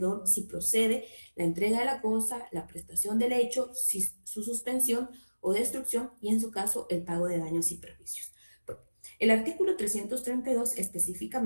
si procede la entrega de la cosa, la prestación del hecho, su suspensión o destrucción y en su caso el pago de daños y perjuicios. Bueno, el artículo 332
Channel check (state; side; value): inverted; both; correlation -1.00